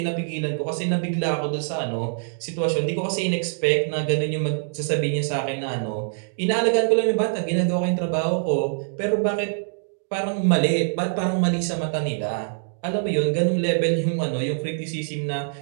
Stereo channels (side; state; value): left; silent; digital silence